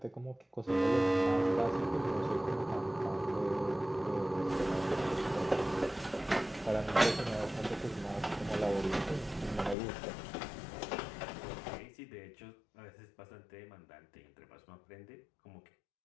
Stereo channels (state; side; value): drops out; right; at 9.8 s